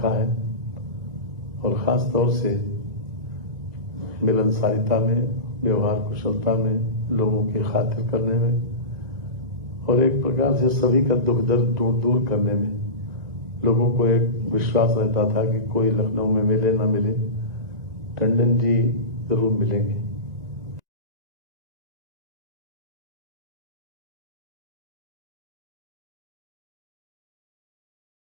है और ख़ास तौर से मिलनसारिता में, व्यवहार कुशलता में, लोगों की खातिर करने में और एक प्रकार से सभी का दुख दर्द दूर करने में। लोगों को एक विश्वास रहता था कि कोई लखनऊ में मिले ना मिले, टंडन जी जरूर मिलेंगे।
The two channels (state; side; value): late; left; 1.9 ms